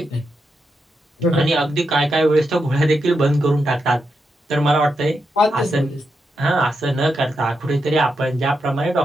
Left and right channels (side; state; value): both; normal; correlation 0.85